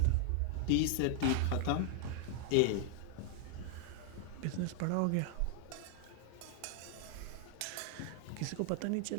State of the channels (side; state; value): both; different; correlation 0.00